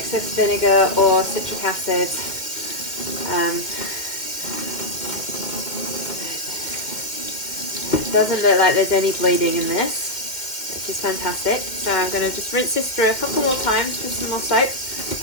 vinegar or citric acid. It doesn't look like there's any bleeding in this, which is fantastic. So I'm going to just rinse this through a couple more times with some more soap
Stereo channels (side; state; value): right; late; 2.0 ms